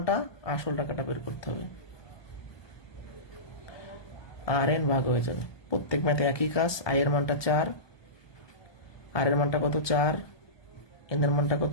আসল টাকাটা বের করতে হবে। RN ভাগ হয়ে যাবে, প্রত্যেক ম্যাথে একই কাজ। আই এর মানটা 4, আর এর মানটা কত? 4, এন এর মানটা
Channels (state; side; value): late; right; 1.2 ms